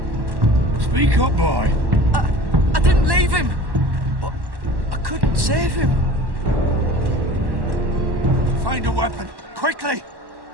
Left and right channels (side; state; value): left; late; 1.1 ms